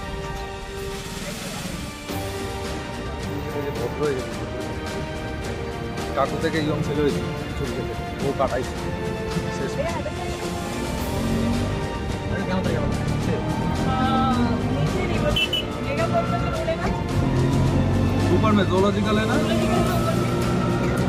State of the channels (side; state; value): both; identical; correlation 1.00